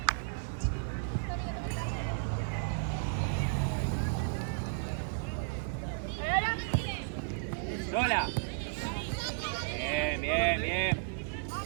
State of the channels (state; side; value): silent; left; digital silence